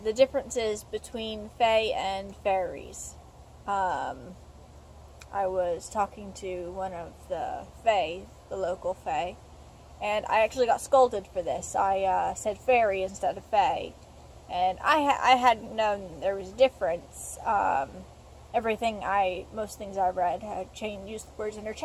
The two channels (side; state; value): both; identical; correlation 1.00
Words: differences between fae and fairies. I was talking to one of the fae, the local fae, and I actually got scolded for this. I said fairy instead of fae. And I hadn't known there was a difference. Most things I read had used the words